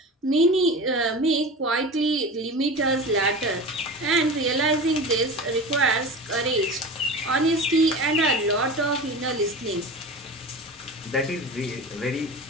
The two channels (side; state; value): both; normal; correlation 0.31